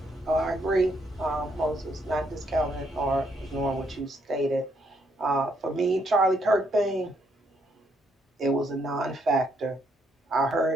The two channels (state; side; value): normal; both; correlation 0.73